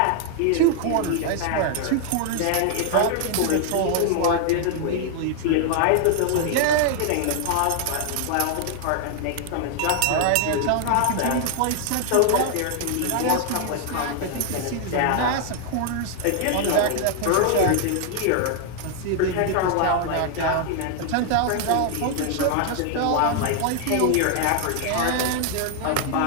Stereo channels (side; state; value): both; different; correlation 0.00